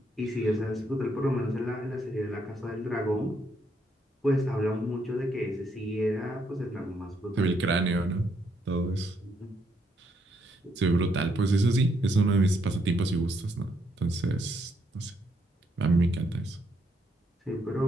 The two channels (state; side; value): normal; both; correlation 0.74